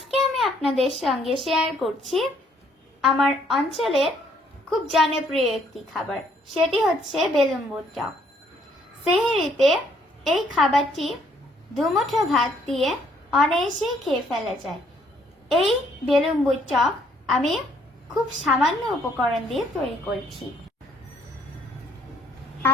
আমি আপনাদের সঙ্গে শেয়ার করছি আমার অঞ্চলের খুব জনপ্রিয় একটি খাবার, সেটি হচ্ছে বেলুম্বুর টক। সেহরিতে এই খাবারটি দুমুঠো ভাত দিয়ে অনায়াসেই খেয়ে ফেলা যায়। এই বেলুম্বুর টক আমি খুব সামান্য উপকরণ দিয়ে তৈরি করেছি।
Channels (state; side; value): normal; both; correlation 0.66